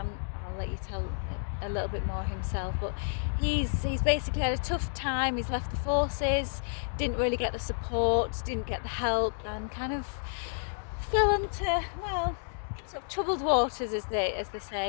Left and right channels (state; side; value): silent; right; digital silence